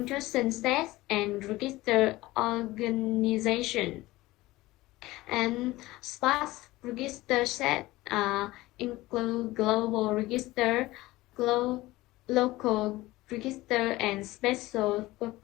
sets and register organization. And Spark register set include global register, local register, and special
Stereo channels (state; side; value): quieter; right; 18.7 dB